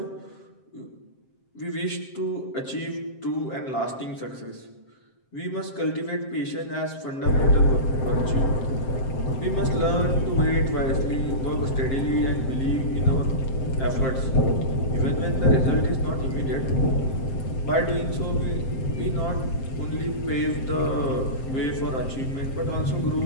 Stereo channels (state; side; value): late; right; 7.6 ms